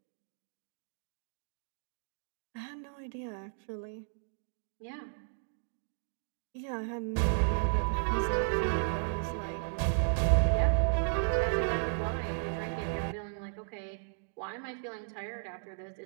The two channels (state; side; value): silent; left; digital silence